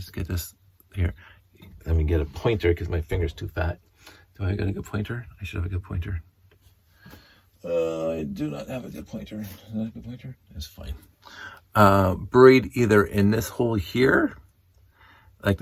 get this here. Let me get a pointer because my finger's too fat. Do I got a good pointer? I should have a good pointer. I do not have a good pointer. Is that a good pointer? That's fine. Buried either in this hole here, like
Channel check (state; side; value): identical; both; correlation 1.00